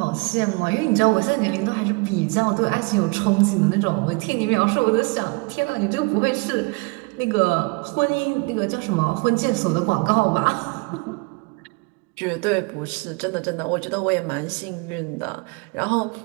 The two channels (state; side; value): quieter; left; 28.8 dB